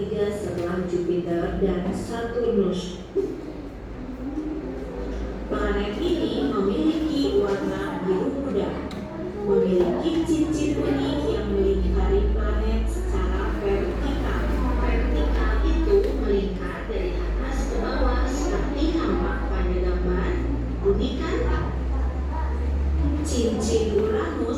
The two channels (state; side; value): identical; both; correlation 1.00